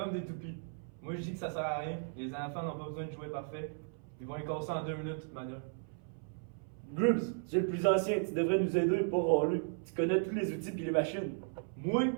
des toupies. Moi je dis que ça sert à rien, les enfants n'ont pas besoin de jouer parfait. Ils vont les casser en 2 minutes de toute manière. Grubbs, tu es le plus ancien, tu devrais nous aider, pas râler. Tu connais tous les outils et les machines. Moi?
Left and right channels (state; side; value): silent; left; 54 dB below the other